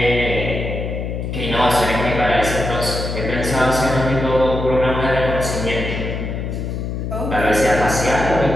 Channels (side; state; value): left; noise; hum, 4 dB below the sound